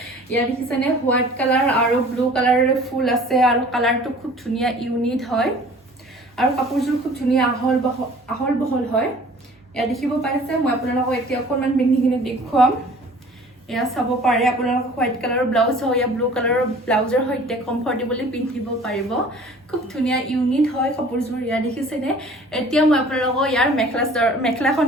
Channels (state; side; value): normal; both; correlation 0.49